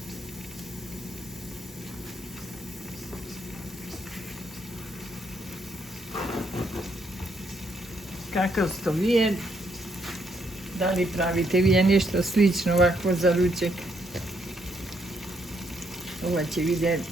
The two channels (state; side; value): normal; both; correlation 0.74